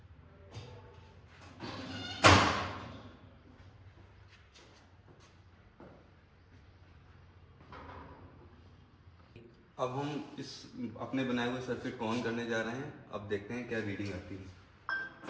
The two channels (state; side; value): identical; both; correlation 1.00